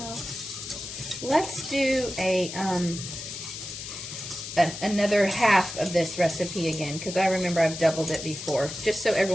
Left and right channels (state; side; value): noise; left; hiss, 9 dB below the sound